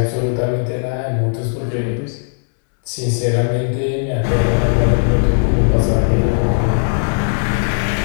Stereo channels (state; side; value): silent; right; 68 dB below the other